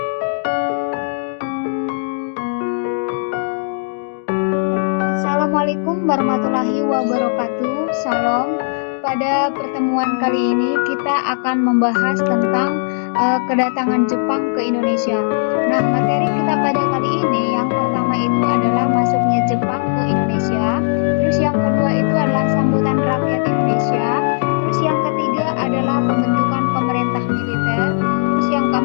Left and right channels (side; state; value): right; silent; digital silence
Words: Assalamualaikum warahmatullahi wabarakatuh. Salam. Pada pertemuan kali ini kita akan membahas tentang kedatangan Jepang ke Indonesia. Nah, materi kita pada kali ini yang pertama itu adalah masuknya Jepang ke Indonesia. Terus yang kedua itu adalah sambutan rakyat Indonesia. Terus yang ketiga adalah pembentukan pemerintah militer. Terus yang